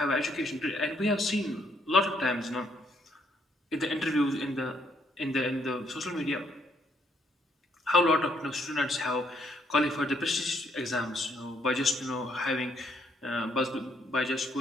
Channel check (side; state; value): both; normal; correlation 0.70